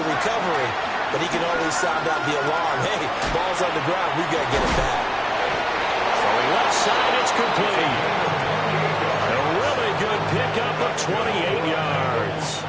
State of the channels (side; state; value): both; identical; correlation 1.00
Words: recovery, but he can always sound out the alarm. Hey, ball's on the ground. We've got to get it back. Throwing left side, it's complete. A really good pickup of 28 yards.